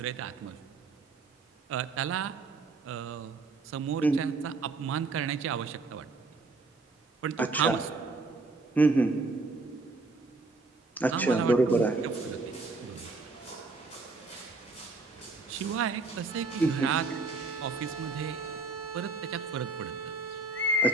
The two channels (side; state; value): left; quieter; 3.6 dB